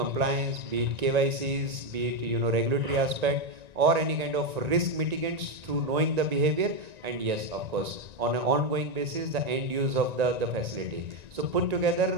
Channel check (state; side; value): late; left; 1.9 ms